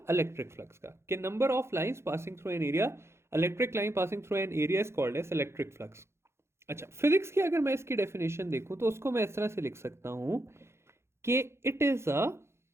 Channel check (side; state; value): left; late; 0.13 ms